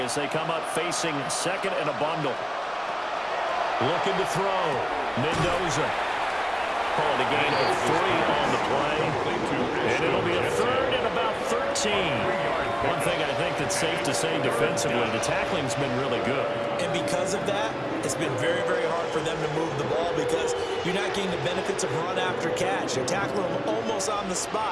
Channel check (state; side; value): identical; both; correlation 1.00